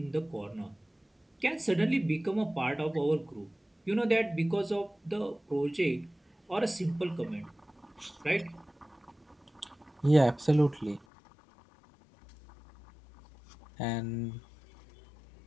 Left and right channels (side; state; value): right; drops out; at 11.1 s